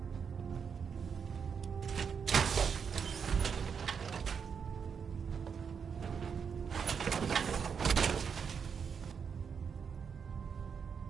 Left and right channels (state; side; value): quieter; left; 6.6 dB